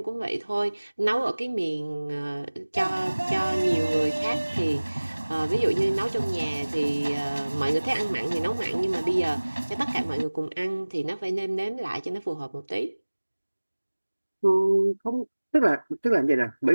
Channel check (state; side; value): inverted; both; correlation -1.00